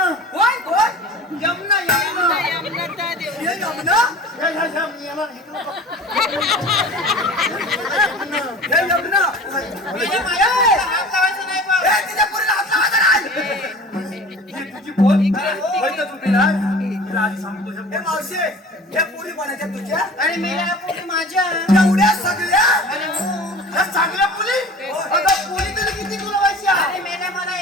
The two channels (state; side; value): normal; both; correlation 0.41